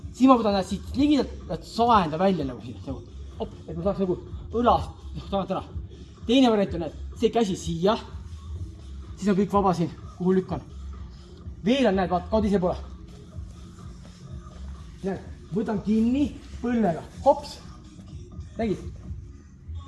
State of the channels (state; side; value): identical; both; correlation 1.00